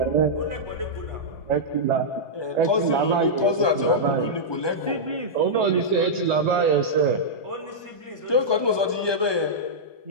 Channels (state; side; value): late; right; 1.2 ms